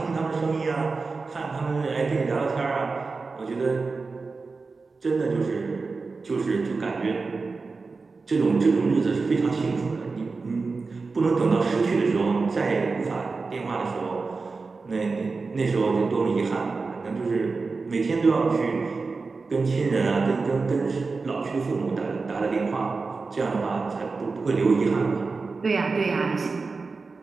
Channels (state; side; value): quieter; left; 4.2 dB